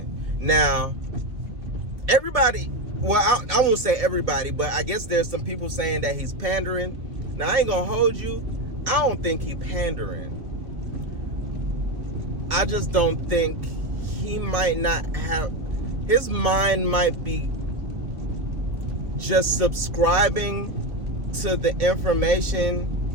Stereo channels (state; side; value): late; left; 2.0 ms